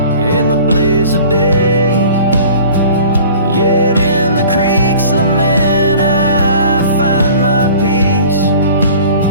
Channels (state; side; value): inverted; both; correlation -0.46